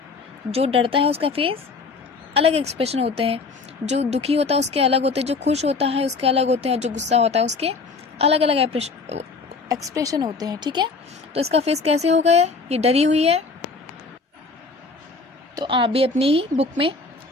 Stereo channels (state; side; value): quieter; right; 4.2 dB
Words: जो डरता है उसका फेस अलग एक्सप्रेशन होते हैं, जो दुखी होता है उसके अलग होते हैं, जो खुश होता है उसके अलग होते हैं, और जो गुस्सा होता है उसके अलग अलग एक्सप्रेशन होते हैं, ठीक है। तो इसका फेस कैसे होगा, ये डरी हुई है। तो आप भी अपनी ही बुक में